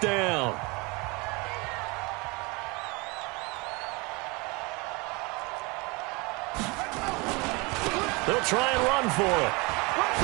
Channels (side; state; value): left; quieter; 26.9 dB